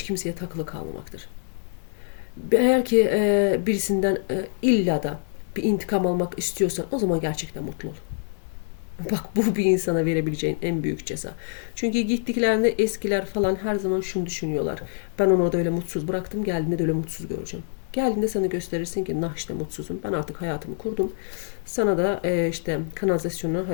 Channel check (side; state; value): right; silent; digital silence